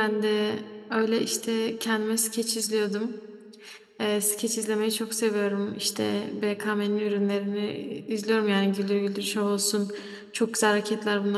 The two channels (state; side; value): identical; both; correlation 1.00